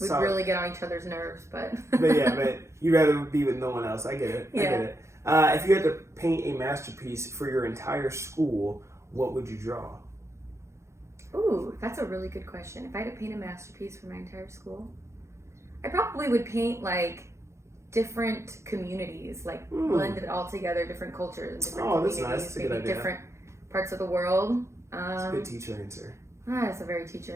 We'd really get on each other's nerves, but... but you'd rather be with no one else. I get it. I get it. If you had to paint a masterpiece for your entire school, what would you draw? Ooh, that's a really good question. If I had to paint a masterpiece for my entire school, I probably would paint like different communities, like blend it all together, different cultures and different communities, that's nice. That's a good idea. Different parts of the world. That's a good teacher answer. That's a very teacher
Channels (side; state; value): left; late; 0.14 ms